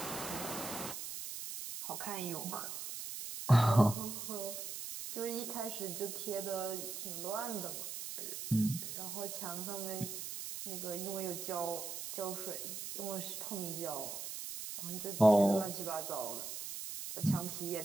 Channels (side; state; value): right; noise; hiss, 6 dB below the sound